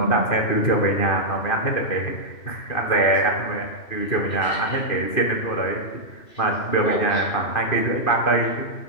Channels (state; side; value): late; right; 2.5 ms